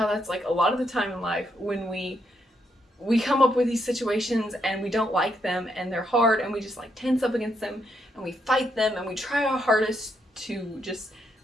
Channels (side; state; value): both; normal; correlation 0.77